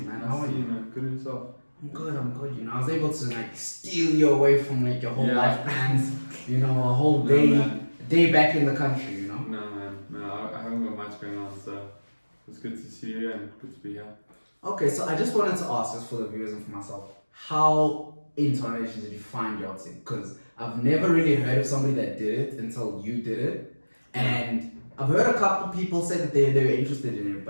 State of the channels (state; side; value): inverted; both; correlation -1.00